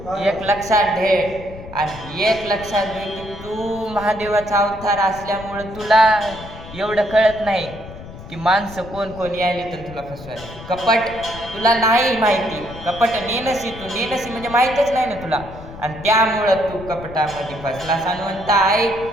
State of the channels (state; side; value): noise; left; rumble, 15 dB below the sound